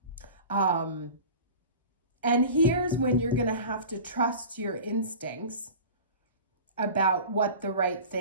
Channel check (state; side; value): inverted; both; correlation -0.37